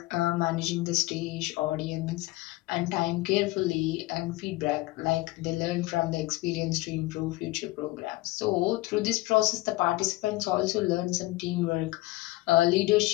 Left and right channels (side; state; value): right; quieter; 19.7 dB